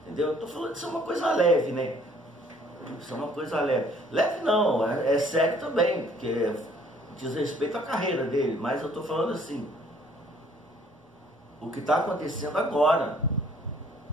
entendeu? Eu tô falando que isso é uma coisa leve, né? Isso é uma coisa leve. Leve não, é sério também, porque diz respeito à carreira dele, mas eu tô falando assim, o que está acontecendo agora.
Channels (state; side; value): normal; both; correlation 0.60